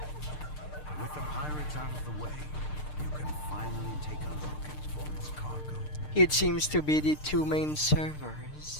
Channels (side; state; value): right; late; 6.6 ms